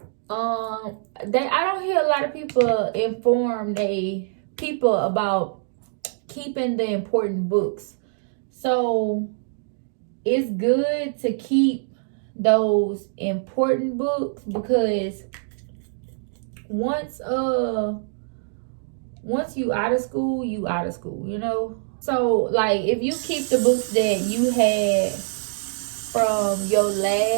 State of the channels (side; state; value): left; silent; digital silence